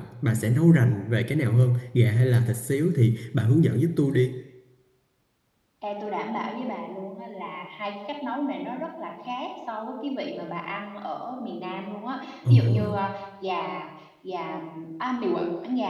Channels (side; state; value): both; identical; correlation 1.00